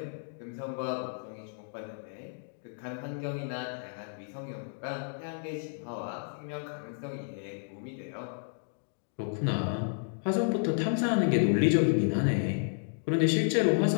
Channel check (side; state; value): right; silent; digital silence